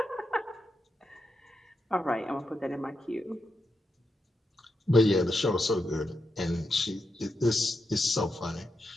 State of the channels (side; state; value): both; normal; correlation 0.85